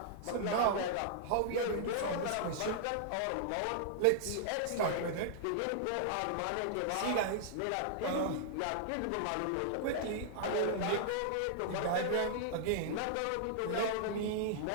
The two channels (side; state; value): both; different; correlation -0.01